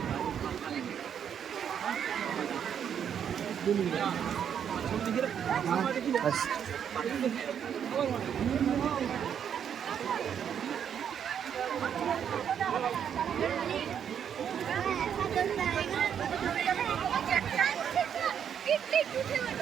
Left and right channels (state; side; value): quieter; left; 8.4 dB